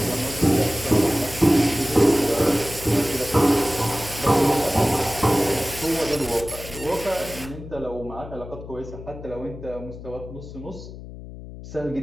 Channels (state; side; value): noise; left; hum, 13 dB below the sound